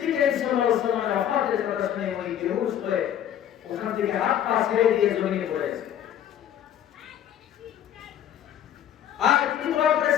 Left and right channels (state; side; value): quieter; right; 10.4 dB